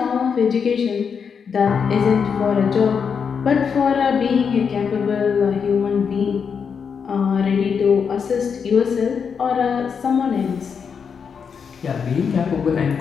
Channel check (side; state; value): right; quieter; 6.4 dB